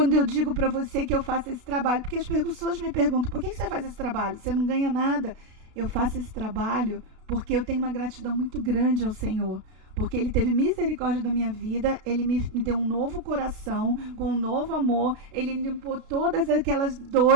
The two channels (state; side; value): late; left; 33 ms